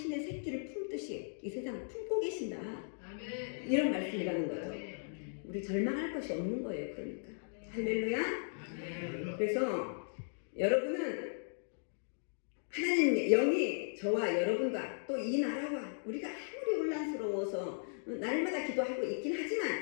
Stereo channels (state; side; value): silent; right; digital silence